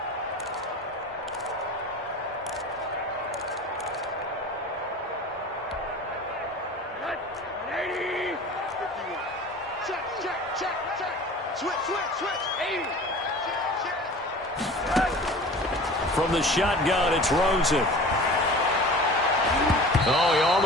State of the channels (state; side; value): normal; both; correlation 0.40